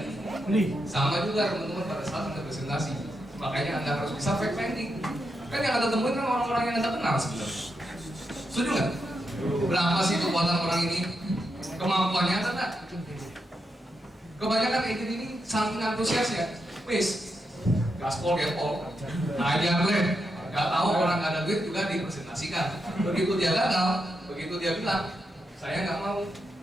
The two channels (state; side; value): normal; both; correlation 0.84